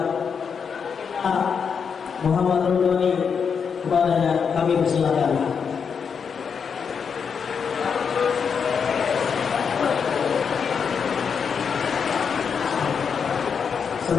Muhammad Rudoni, kepadanya kami persilakan.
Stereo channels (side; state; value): right; quieter; 6.4 dB